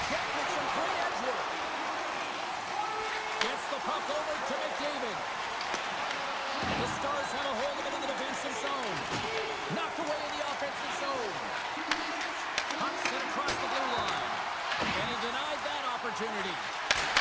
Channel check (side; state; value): both; identical; correlation 1.00